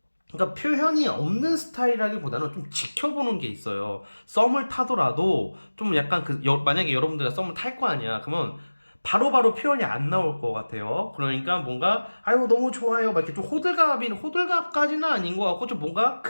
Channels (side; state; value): both; inverted; correlation -1.00